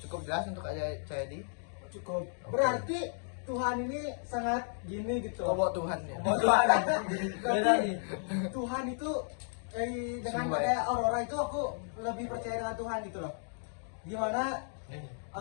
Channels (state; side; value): silent; right; digital silence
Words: Cukup jelas untuk Kak Cahyadi? Cukup. Berarti Tuhan ini sangat gini gitu. Oh, bawa Tuhan ya. Berarti Tuhan itu dengan Sumber. kayak aurora itu aku lebih percaya dengan Tuhan gitu loh. Gimana